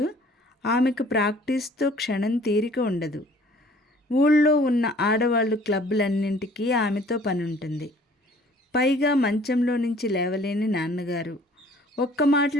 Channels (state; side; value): normal; both; correlation 0.54